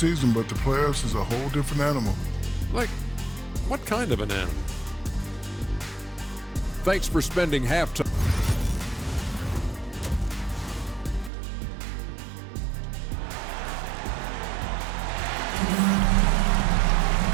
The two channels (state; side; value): drops out; left; at 11.3 s